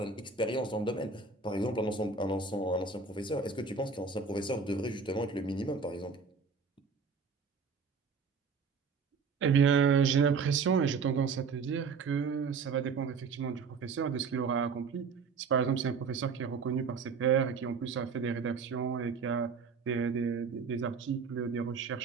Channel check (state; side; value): quieter; left; 5.2 dB